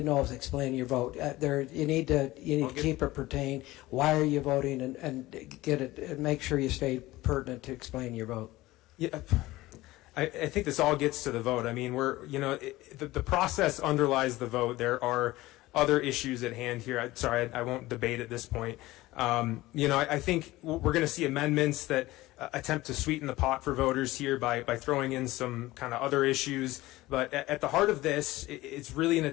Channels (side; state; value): right; quieter; 18.2 dB